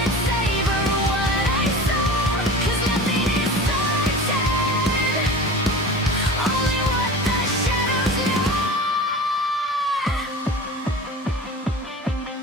it savor what I saw, 'cause nothing is certain, only what the shadows know.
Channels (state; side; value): normal; both; correlation 0.35